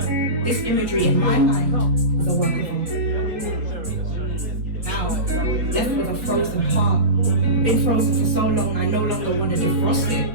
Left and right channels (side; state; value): left; late; 4.4 ms